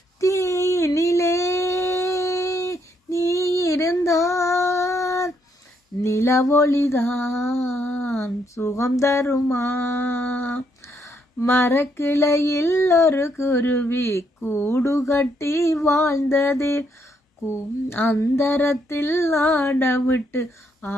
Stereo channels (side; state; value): both; normal; correlation 0.74